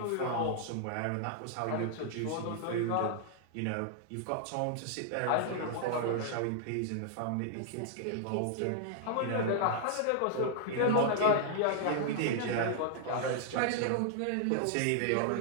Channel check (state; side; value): different; both; correlation -0.01